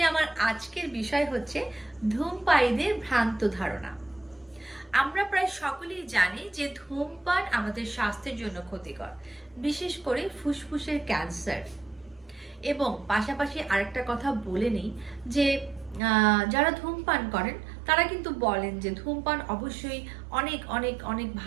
আমার আজকের বিষয় হচ্ছে ধূমপায়ীদের ভ্রান্ত ধারণা। আমরা প্রায় সকলেই জানি যে ধূমপান আমাদের স্বাস্থ্যের জন্য ক্ষতিকর, বিশেষ করে ফুসফুসের ক্যান্সার। এবং পাশাপাশি আরেকটা কথা বলে নিই যে যারা ধূমপান করেন তারা কিন্তু বলেন যে ধূমপান অবশ্যই অনেক অনেক অনেক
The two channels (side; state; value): left; drops out; at 16.0 s